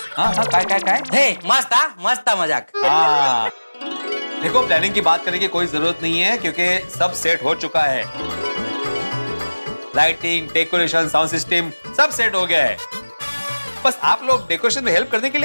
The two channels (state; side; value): inverted; both; correlation -1.00